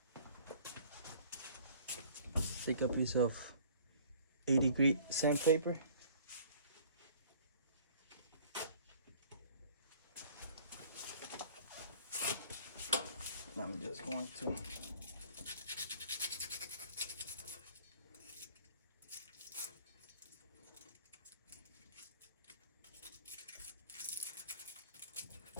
take a piece of 80-grit sandpaper. I'm just going to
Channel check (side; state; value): both; inverted; correlation -0.51